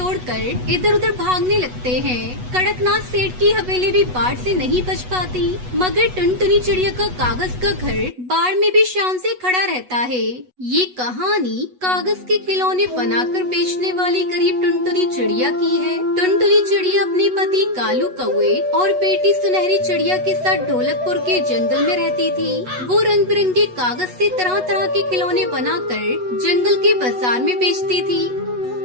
इधर उधर भागने लगते हैं। कड़कनाथ सेठ की हवेली भी बाढ़ से नहीं बच पाती, मगर टुनटुनी चिड़िया का कागज का घर बाढ़ में भी शान से खड़ा रहता है। ये कहानी कागज के खिलौने बनाकर बेचने वाली गरीब टुनटुनी चिड़िया की है। टुनटुनी चिड़िया अपने पति कालू कौवे और बेटी सुनहरी चिड़िया के साथ ढोलकपुर के जंगल में रहती थी। वो रंग बिरंगे कागज से तरह तरह के खिलौने बनाकर जंगल के बाजार में बेचती थी।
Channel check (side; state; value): left; late; 8.1 ms